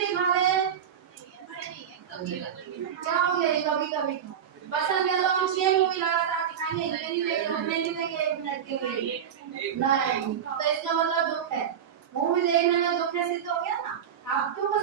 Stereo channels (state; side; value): quieter; left; 8.6 dB